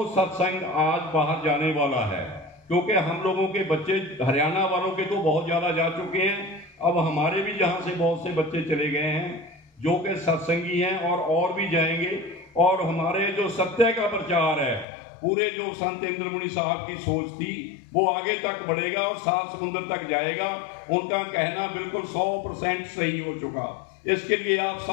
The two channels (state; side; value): drops out; right; at 14.9 s